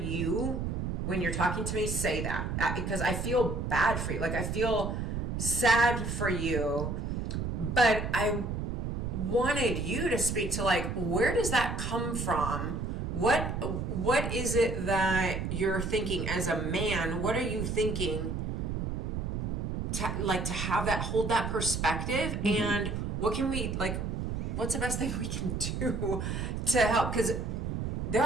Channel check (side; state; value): right; noise; rumble, 2 dB below the sound